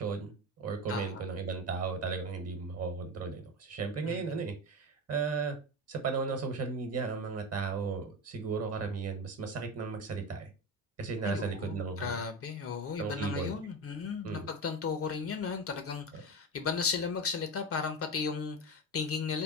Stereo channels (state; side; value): normal; both; correlation 0.22